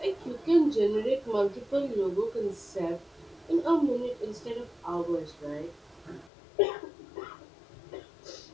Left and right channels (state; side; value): drops out; right; at 6.3 s